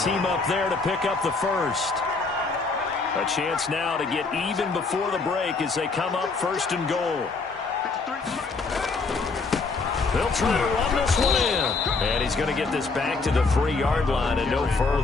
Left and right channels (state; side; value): quieter; right; 4.1 dB